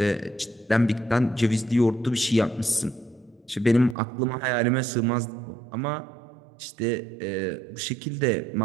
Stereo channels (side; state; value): left; drops out; at 4.0 s